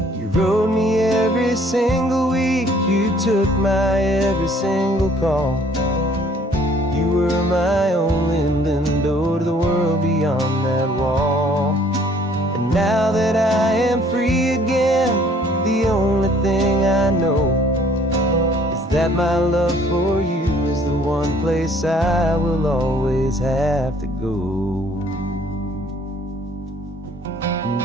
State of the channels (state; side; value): normal; both; correlation 0.59